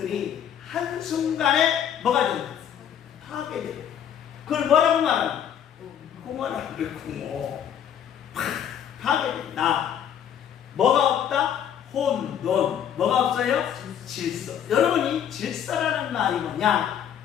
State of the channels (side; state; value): right; quieter; 9.2 dB